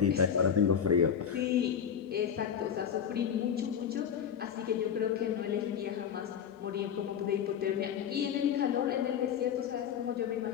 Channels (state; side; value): quieter; right; 8.2 dB